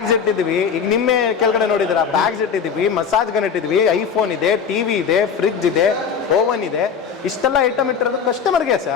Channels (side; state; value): right; quieter; 6.7 dB